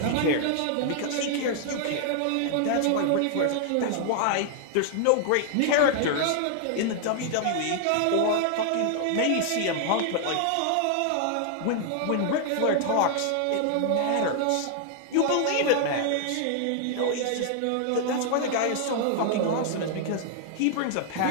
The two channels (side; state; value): both; different; correlation 0.00